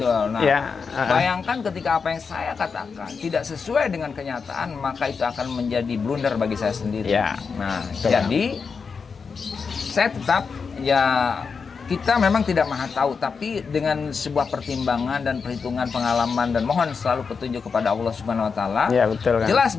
Nah, bayangkan ketika apa yang saya katakan tidak sesuai dengan kenyataan, maka itu akan menjadi blunder bagi saya sendiri. Nah, jadi saya tetap kita memang tidak maha tahu, tapi dengan sebuah pertimbangan dan perhitungan pengalaman dan mohon selalu petunjuk kepada Allah Subhanahu wa taala. Jelas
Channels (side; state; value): right; quieter; 5.5 dB